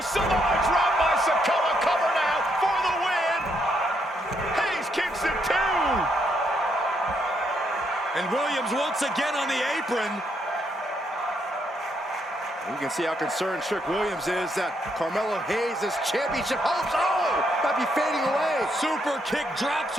Samoa drop by Sikoa, cover now for the win. Hayes kicks it too. And Williams once again on the apron. You can see how concerned Trick Williams is that Carmelo Hayes' championship hopes, might be fading away. Super kick drops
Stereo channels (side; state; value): both; normal; correlation 0.75